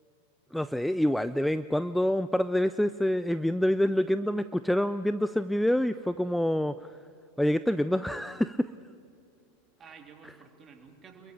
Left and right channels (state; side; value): normal; both; correlation 0.97